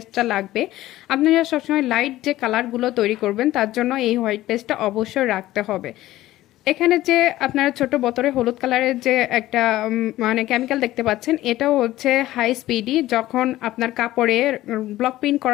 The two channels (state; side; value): quieter; right; 15.6 dB